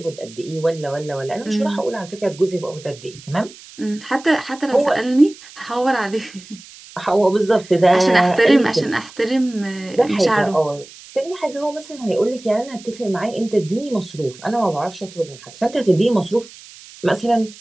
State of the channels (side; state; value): right; noise; hiss, 20 dB below the sound